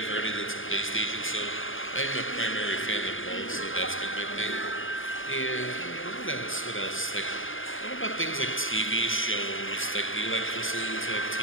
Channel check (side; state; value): right; late; 0.58 ms